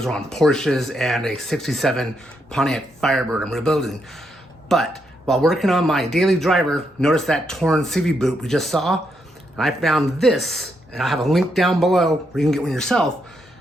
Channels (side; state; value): both; normal; correlation 0.79